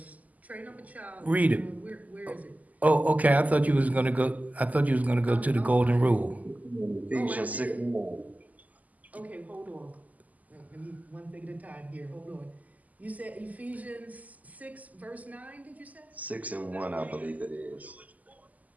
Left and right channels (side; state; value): left; late; 0.078 ms